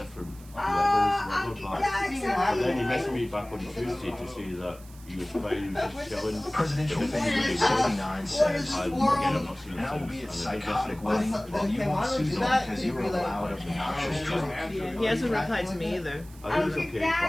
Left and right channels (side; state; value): right; noise; hiss, 23 dB below the sound